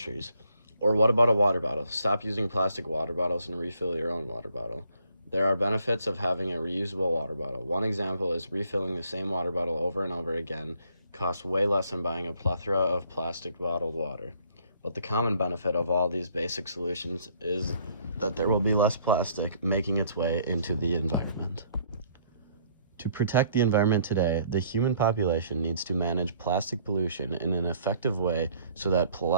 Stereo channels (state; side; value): inverted; both; correlation -0.63